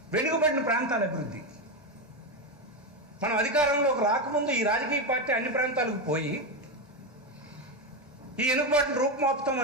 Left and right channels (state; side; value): normal; both; correlation 0.11